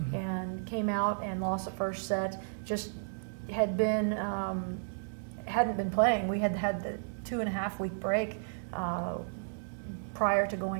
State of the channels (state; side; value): silent; left; digital silence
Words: and came out and lost the first set. Just hadn't been playing. We had the 2.5-week break prior to